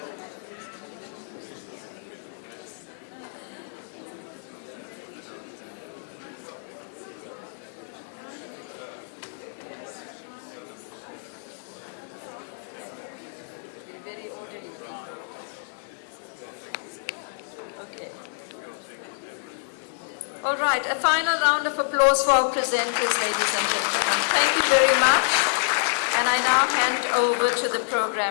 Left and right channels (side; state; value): right; silent; 60 dB below the other